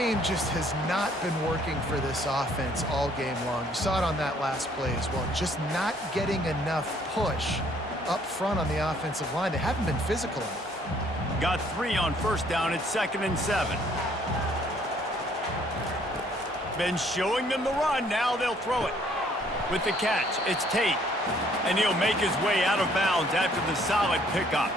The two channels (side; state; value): both; normal; correlation 0.63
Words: just has not been working for this offense all game long. You saw it on that last play as well. Just not getting enough push up front on the offensive line. They haven't been physical enough. Got 3 on 1st down at 2nd and 7. Been showing them the run. Now they'll throw it. With the catch, it's Tate. And he'll make his way out of bounds after the solid pickup.